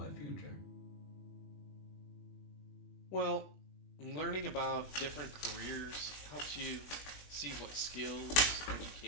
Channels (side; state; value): right; late; 21 ms